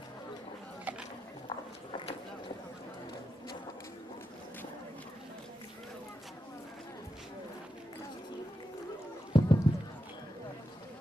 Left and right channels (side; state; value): both; normal; correlation 0.87